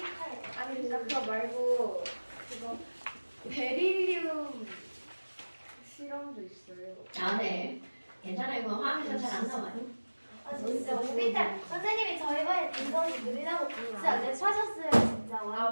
아니 그거 말고 그거 베릴리움 실험도 있어요. 아, 네. 괜찮아요. 그거 화학에서 잘 안 나와요. 아 진짜 오비탈 선생님이 저희반에 등급이 느리다고 진짜 랩하셨어요 진짜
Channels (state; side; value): inverted; both; correlation -1.00